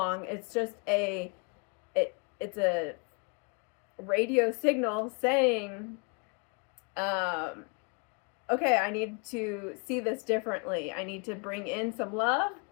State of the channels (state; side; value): quieter; right; 34.6 dB